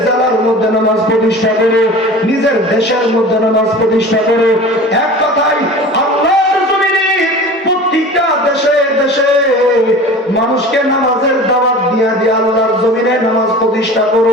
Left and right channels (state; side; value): normal; both; correlation 0.38